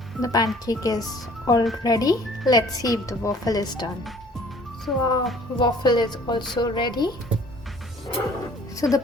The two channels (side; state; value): both; normal; correlation 0.53